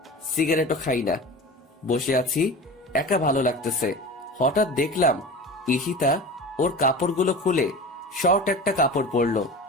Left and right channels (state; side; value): normal; both; correlation 0.33